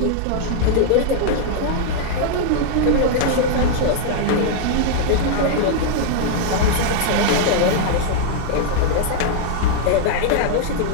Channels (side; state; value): both; different; correlation -0.01